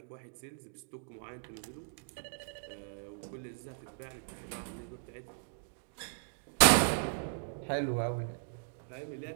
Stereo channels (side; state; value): left; silent; digital silence